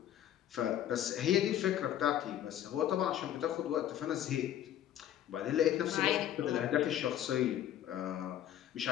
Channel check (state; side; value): quieter; right; 11.4 dB